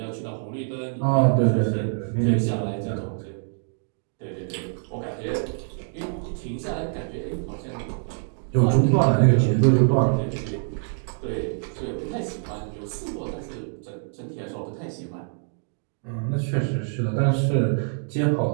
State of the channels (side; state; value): left; silent; 61 dB below the other